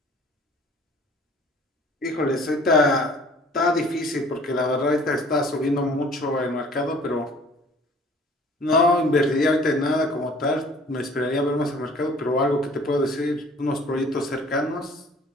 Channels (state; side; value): normal; both; correlation 0.52